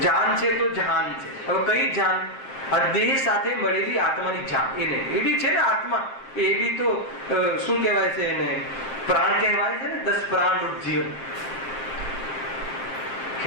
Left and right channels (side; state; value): right; late; 7.6 ms